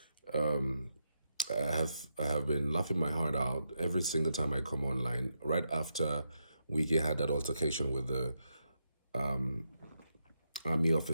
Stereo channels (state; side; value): inverted; both; correlation -0.83